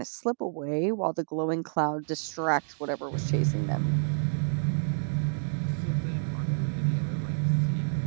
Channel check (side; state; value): left; silent; digital silence